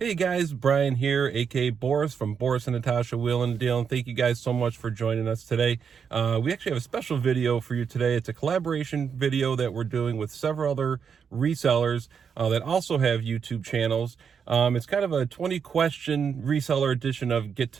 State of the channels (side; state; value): left; quieter; 6.8 dB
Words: Hey guys, Brian here, aka Boris from Boris and Natasha Wheeling and Dealing. Thank you guys so much for joining us today. We actually have a special video for you today. It's a collaboration video that we're doing with several other resellers that also have YouTube channels. It's kind of a 20-question reseller edition of Get